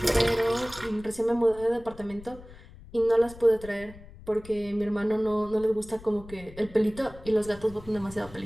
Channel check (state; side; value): noise; left; rumble, 18 dB below the sound